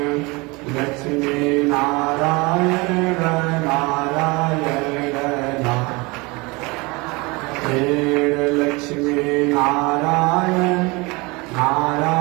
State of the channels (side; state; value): left; quieter; 25.7 dB